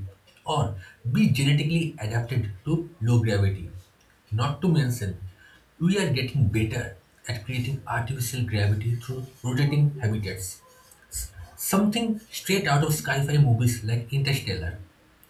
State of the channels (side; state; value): both; identical; correlation 1.00